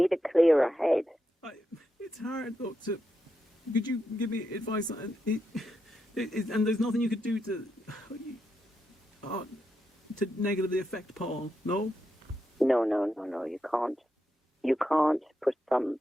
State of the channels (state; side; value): normal; both; correlation 0.85